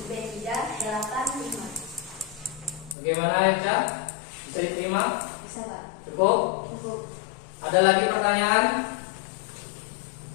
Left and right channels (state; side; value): drops out; right; at 3.0 s